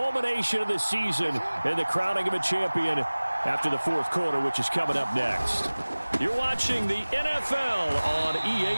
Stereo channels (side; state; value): both; inverted; correlation -1.00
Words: of the season and the crowning of a champion after the fourth quarter, which is coming up next. You're watching the NFL on